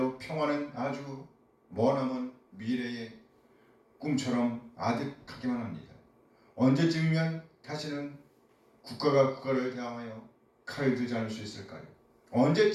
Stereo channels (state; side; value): identical; both; correlation 1.00